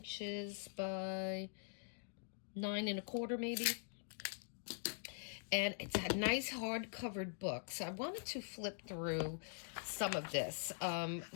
by 9 1/4 maybe, and it's a nice hard-covered book. So I wanted to flip through some of this.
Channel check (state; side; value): silent; right; digital silence